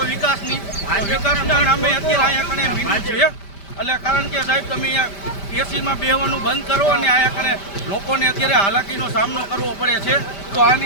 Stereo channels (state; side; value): late; right; 5.1 ms